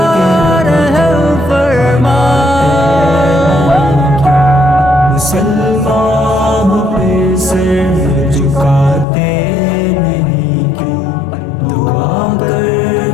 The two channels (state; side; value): drops out; right; at 9.1 s